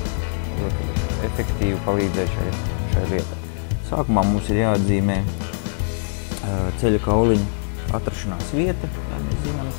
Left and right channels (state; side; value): silent; right; 63 dB below the other